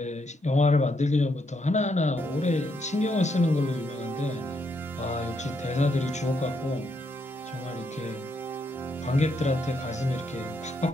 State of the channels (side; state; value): both; normal; correlation 0.77